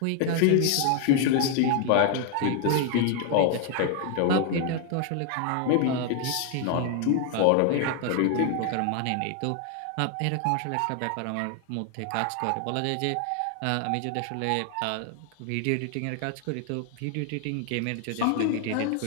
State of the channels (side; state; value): both; different; correlation 0.00